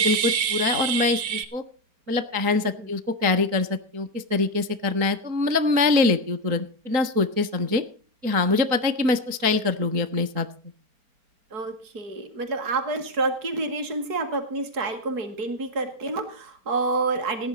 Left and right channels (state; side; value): late; left; 4.4 ms